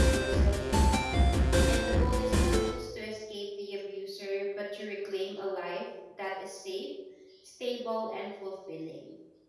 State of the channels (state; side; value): identical; both; correlation 1.00